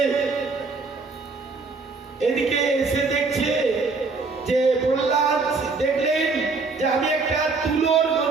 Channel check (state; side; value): quieter; left; 4.1 dB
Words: এদিকে এসে দেখছে যে প্রহ্লাদ দেখলেন যে আমি একটা তুলোর